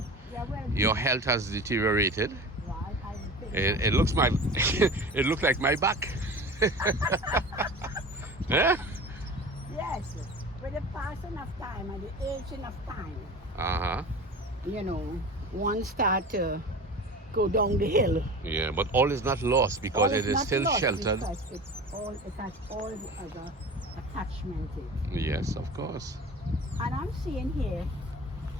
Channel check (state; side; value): normal; both; correlation 0.35